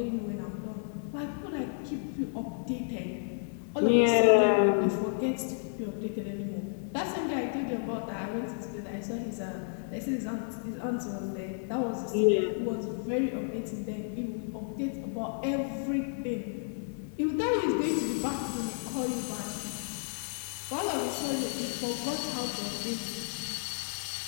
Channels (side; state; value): right; silent; digital silence